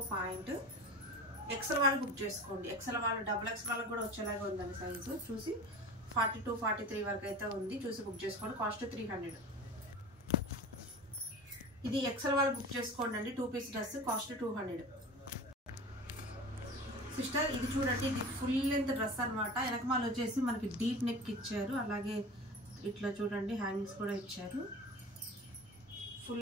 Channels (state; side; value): normal; both; correlation 0.35